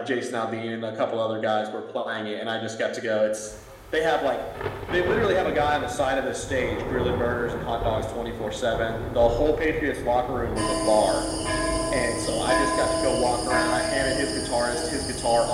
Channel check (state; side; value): identical; both; correlation 1.00